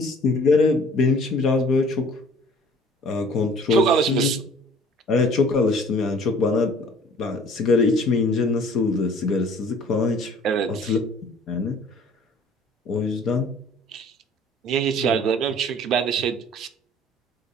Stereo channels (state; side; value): normal; both; correlation 0.52